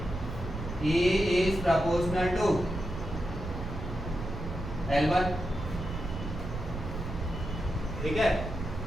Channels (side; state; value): right; noise; rumble, 7 dB below the sound